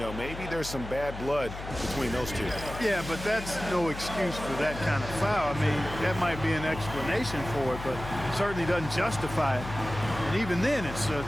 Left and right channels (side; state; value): left; noise; hum, 10 dB below the sound